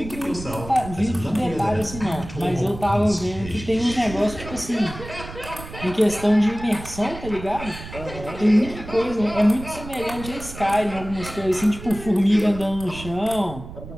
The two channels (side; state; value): right; noise; rumble, 12 dB below the sound